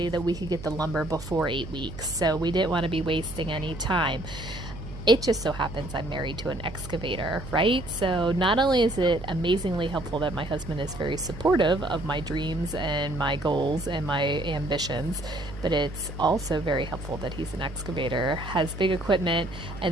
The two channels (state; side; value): noise; right; hum, 12 dB below the sound